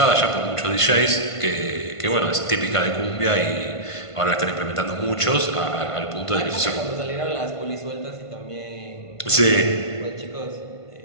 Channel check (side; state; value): right; late; 1.5 ms